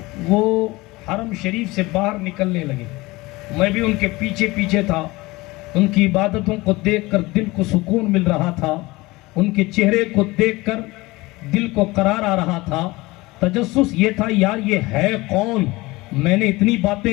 वो हरम शरीफ से बाहर निकलने लगे। मैं भी उनके पीछे पीछे था। उनकी इबादतों को देखकर दिल को सुकून मिल रहा था, उनके चेहरे को देखकर दिल को करार आ रहा था। तजस्सुस ये था यार ये है कौन। मैंने इतनी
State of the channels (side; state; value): right; quieter; 21.4 dB